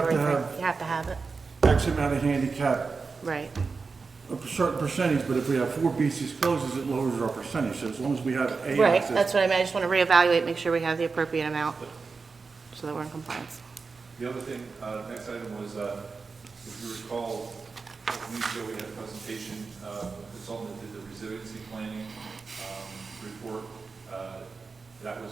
to thing. have- You have to have it, X amount of handicap, right. a certain percentage, but if we have 4 beaches closed, it lowers our percentage. So as long as we have A Right, access. that's what I mean, I just want to reevaluate, make sure we have the appropriate amount, so that we're in compliance. The other thing, next item was, if you recall, a couple weeks ago, we had a presentation, a consultant that did the resiliency planning report. That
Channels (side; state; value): left; quieter; 4.6 dB